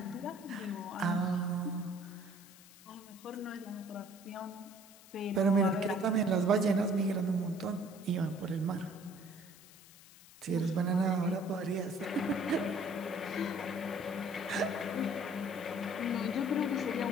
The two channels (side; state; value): left; noise; hiss, 21 dB below the sound